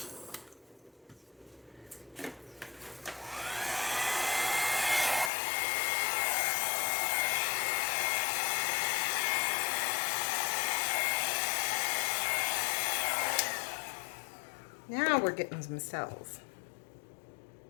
Now we're getting some cells.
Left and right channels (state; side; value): drops out; right; at 5.3 s